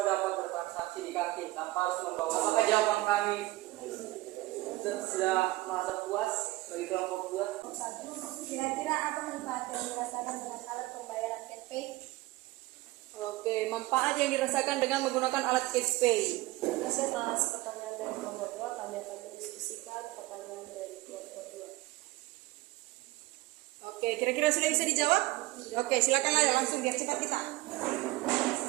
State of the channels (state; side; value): quieter; left; 19.1 dB